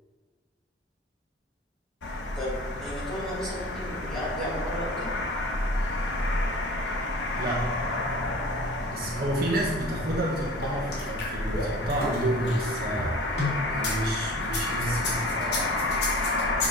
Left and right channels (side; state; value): both; normal; correlation 0.41